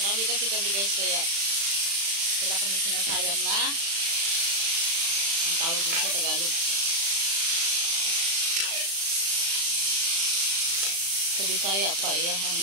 Marami kasi kami, guys, kaya wala kami sinasayang na ang tawag din sa Tagalog. Sa Bisaya pa, iyahang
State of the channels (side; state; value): left; late; 36 ms